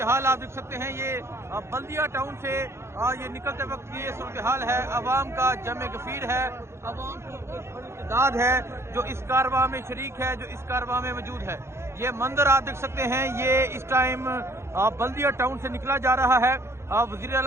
हाल आप देख सकते हैं। ये बल्दिया टाउन से ये निकलते वक्त ये सूरत हाल है। अवाम का जमे गफीर है, अवाम की एक बड़ी तादाद है जो इस कारवां में शरीक है, जो इस कारवां में मौजूद है। ये मंदिर आप देख सकते हैं, ये इस टाइम बल्दिया टाउन से निकला जा रहा है। वज़ीर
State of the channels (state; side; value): late; left; 0.13 ms